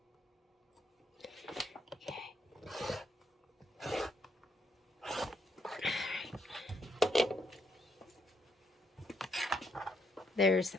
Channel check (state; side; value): normal; both; correlation 0.75